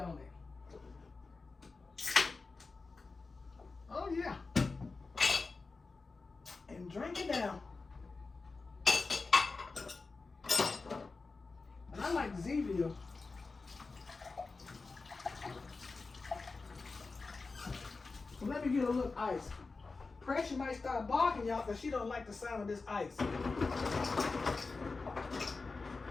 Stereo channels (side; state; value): right; quieter; 4.0 dB